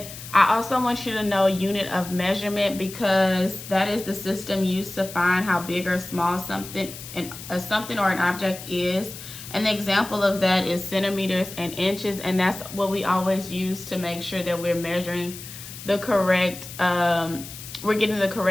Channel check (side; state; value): left; noise; hiss, 13 dB below the sound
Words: I also want you to know unit of measurement, because that is the system used to find how big or small something or an object is. An example of that is centimeters and inches, and that's what we always use to make sure that we're measuring the correct, we're getting the